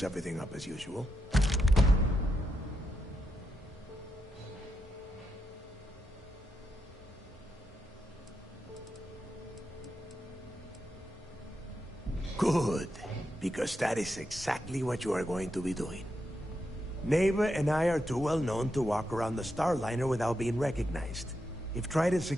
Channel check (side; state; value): both; normal; correlation 0.84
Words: everything up as usual. Good, because that is exactly what you are going to be doing. Neva and I are too well known to walk around the Starliner without being recognized. If Trident